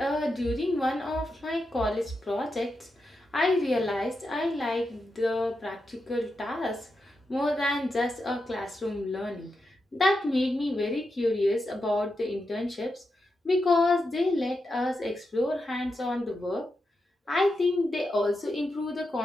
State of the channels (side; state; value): both; normal; correlation 0.87